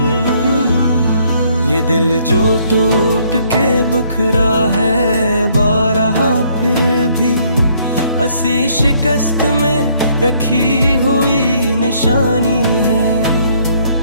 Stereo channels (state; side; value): inverted; both; correlation -0.65